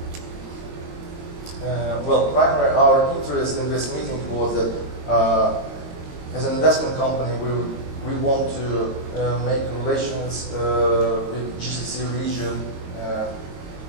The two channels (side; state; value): left; late; 22 ms